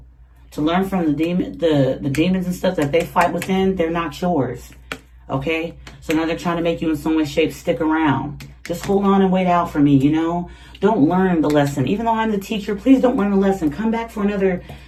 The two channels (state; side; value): identical; both; correlation 1.00